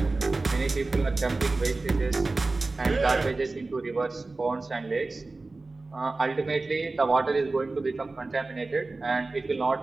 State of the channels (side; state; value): left; quieter; 3.4 dB